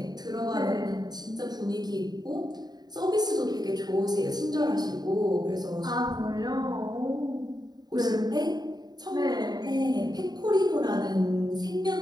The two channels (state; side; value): late; left; 0.20 ms